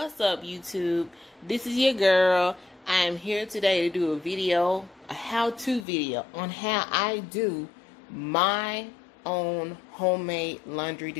up, YouTube? This is your girl. I am here today to do a how-to video on how I do my own homemade laundry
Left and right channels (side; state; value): right; drops out; at 5.9 s